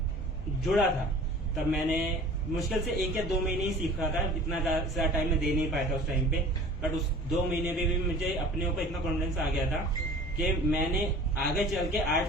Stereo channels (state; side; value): normal; both; correlation 0.44